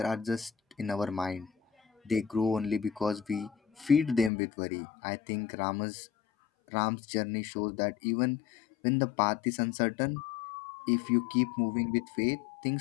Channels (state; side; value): drops out; right; at 4.3 s